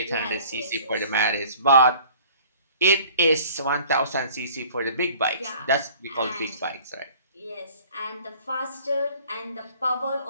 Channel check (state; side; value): inverted; both; correlation -0.51